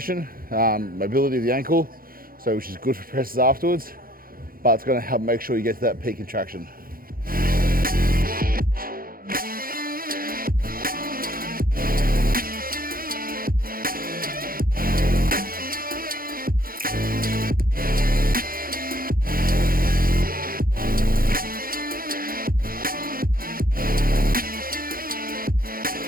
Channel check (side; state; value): left; late; 0.42 ms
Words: mobility of the ankle, so which is good for presses afterwards, but it's going to help make sure you get to that peak contraction.